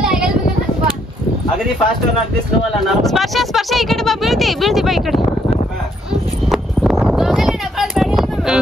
ಅಗದಿ ಫಾಸ್ಟ್ ಸ್ಪರ್ಶ ಈ ಕಡೆ ಬಾ ಬೀಳ್ತಿ ಬಾ ಈ ಕಡೆ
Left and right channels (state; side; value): normal; both; correlation 0.71